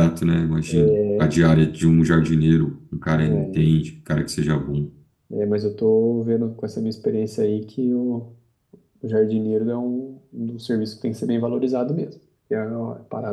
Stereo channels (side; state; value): both; identical; correlation 1.00